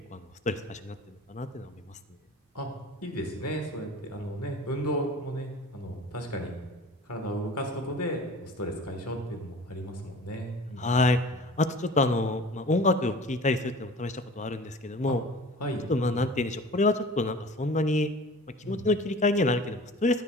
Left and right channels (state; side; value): normal; both; correlation 0.42